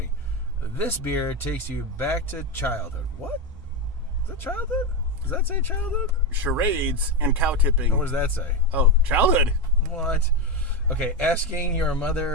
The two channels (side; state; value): both; normal; correlation 0.13